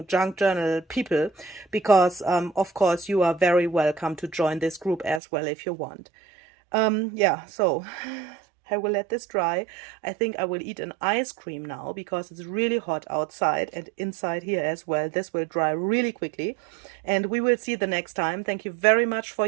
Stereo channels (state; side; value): drops out; left; at 5.2 s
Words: junk journal people, because, of course, you are very welcome to join this group as well if you want. Yeah, so I will let this dry. I think I will eat an ice cream now because it's really hot outside and inside here as well. This will dry really quickly, and we will see the next time. Thank you very much for